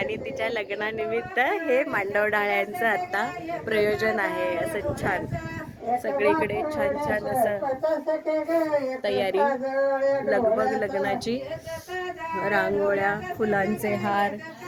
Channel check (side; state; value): both; identical; correlation 1.00